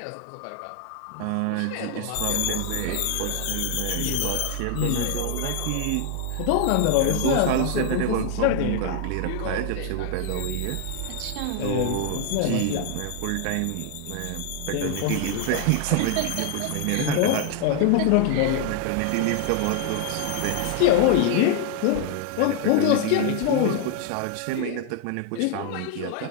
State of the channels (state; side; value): different; both; correlation 0.00